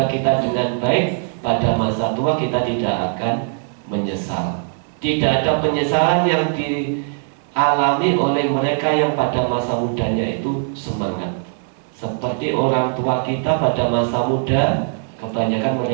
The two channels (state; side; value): silent; left; 66 dB below the other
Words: kita dengan baik, pada masa tua kita tidak akan menyesal. Tidak ada penyesalan yang dialami oleh mereka yang pada masa mudanya itu semangat. Seperti orang tua kita pada masa muda, Kebanyakan